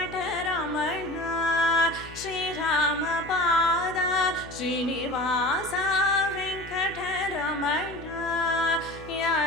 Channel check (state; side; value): noise; left; hum, 17 dB below the sound